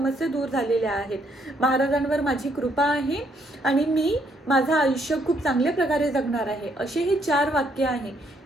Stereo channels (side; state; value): both; normal; correlation 0.71